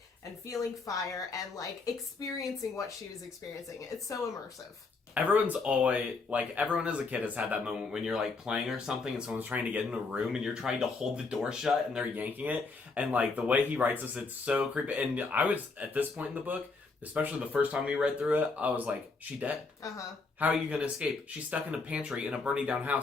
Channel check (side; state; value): right; quieter; 4.1 dB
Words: and feeling fire and, like, experiencing what she was experiencing. It's so immersive. Everyone's always, like, everyone as a kid has had that moment when you're, like, playing or something and someone's trying to get in a room and you're trying to hold the door shut and they're yanking it. And, like, the way he writes this, it's so creepy. And I was, at this point in the book, especially the first time we read through it, I was like, she dead. Uh-huh. How are you going to escape? She's stuck in a pantry in a burning down